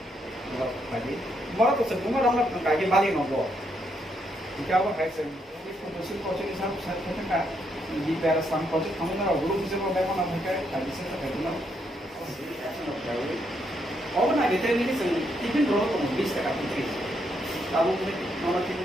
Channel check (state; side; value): normal; both; correlation 0.77